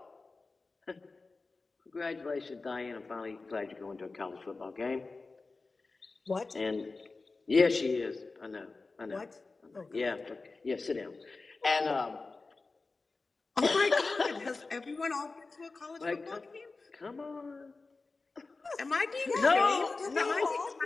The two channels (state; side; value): quieter; right; 3.8 dB